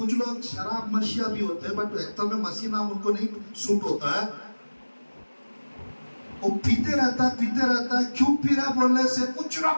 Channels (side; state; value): both; inverted; correlation -1.00